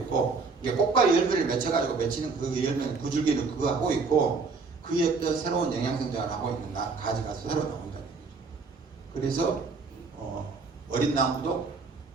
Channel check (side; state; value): left; quieter; 4.5 dB